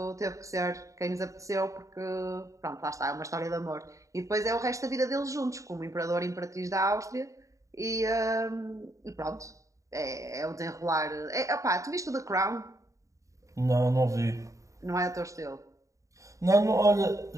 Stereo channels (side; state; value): left; late; 0.16 ms